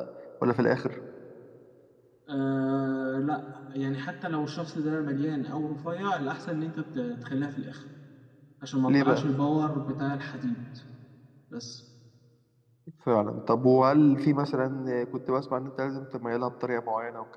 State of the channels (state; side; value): identical; both; correlation 1.00